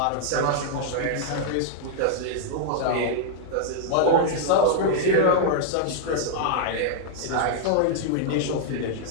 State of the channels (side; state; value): both; different; correlation -0.01